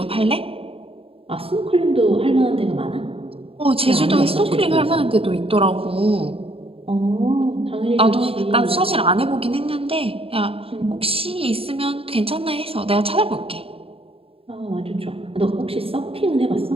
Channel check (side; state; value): left; late; 0.27 ms